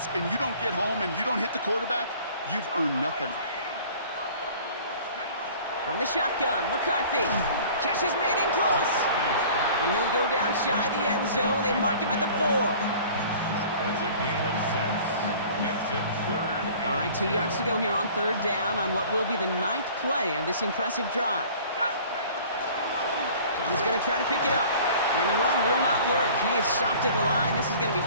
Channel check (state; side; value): inverted; both; correlation -0.47